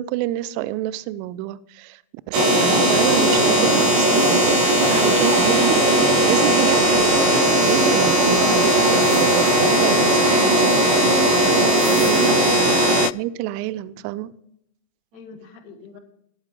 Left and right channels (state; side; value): late; left; 22 ms